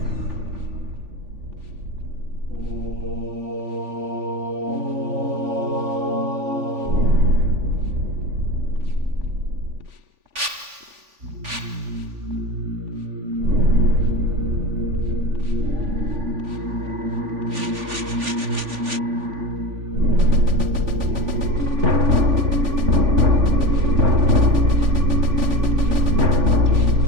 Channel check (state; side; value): late; left; 3.5 ms